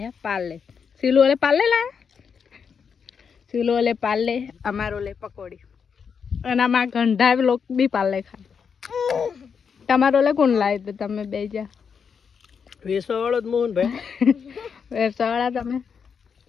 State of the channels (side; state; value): right; quieter; 6.5 dB